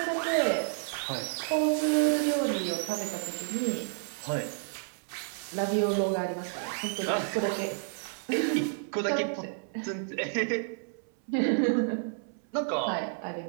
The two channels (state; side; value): silent; left; 57 dB below the other